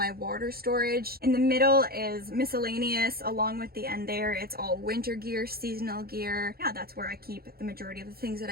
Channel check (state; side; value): late; left; 0.44 ms